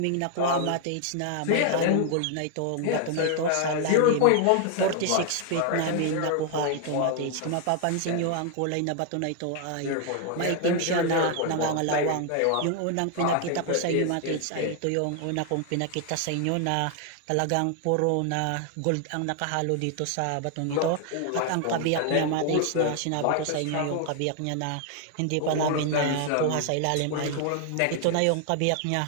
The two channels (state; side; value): different; both; correlation 0.00